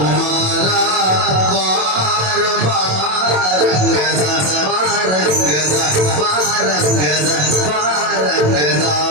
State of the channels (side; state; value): left; late; 27 ms